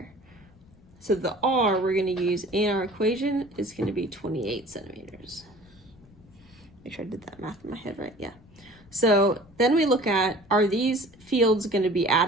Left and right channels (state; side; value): noise; left; rumble, 26 dB below the sound